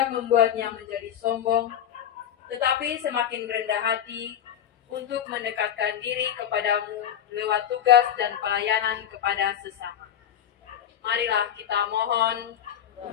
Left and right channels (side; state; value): right; quieter; 9.8 dB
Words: membuatnya menjadi sombong, tetapi semakin rendah hati untuk mendekatkan diri kepadamu lewat tugas dan pelayanan kepada sesama. Marilah kita mohon.